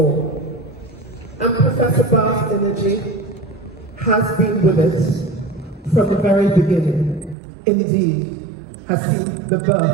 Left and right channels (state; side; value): drops out; left; at 7.4 s